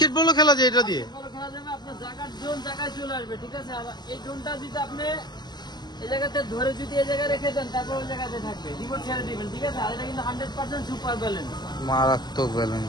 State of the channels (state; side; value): late; right; 0.21 ms